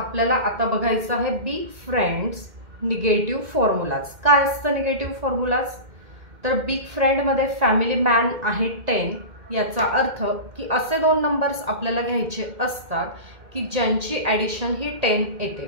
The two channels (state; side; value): late; left; 2.1 ms